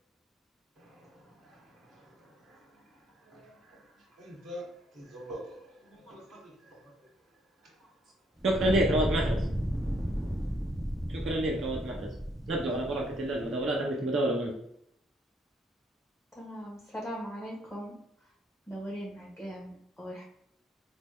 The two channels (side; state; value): both; normal; correlation 0.69